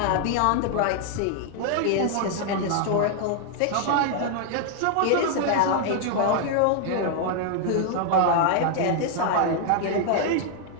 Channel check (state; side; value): different; both; correlation 0.00